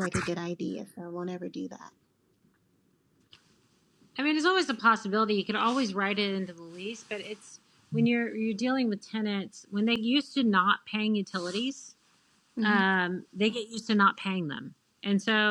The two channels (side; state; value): both; identical; correlation 1.00